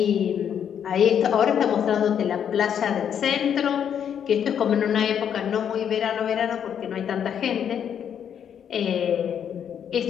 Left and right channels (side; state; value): right; quieter; 8.6 dB